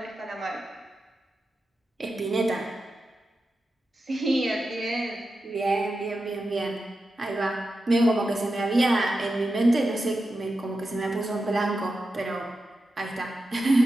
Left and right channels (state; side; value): normal; both; correlation 0.90